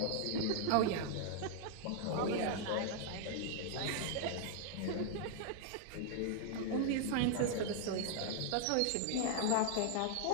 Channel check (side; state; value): both; different; correlation -0.01